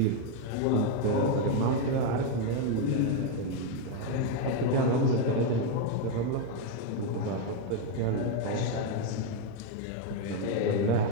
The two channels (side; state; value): both; different; correlation 0.02